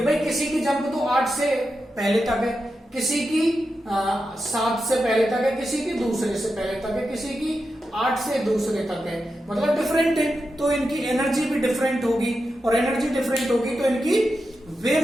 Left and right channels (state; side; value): normal; both; correlation 0.89